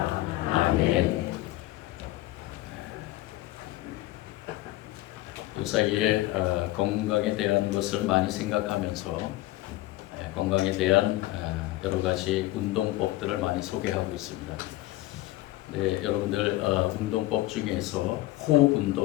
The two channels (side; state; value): right; quieter; 17.3 dB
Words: 아멘. 요 사이에 건강에 대한 것을 많이 생각하면서 건강에 대한 여러 가지 운동법들을 많이 소개하고 있습니다. 네, 여러분들 운동법 중에서 호흡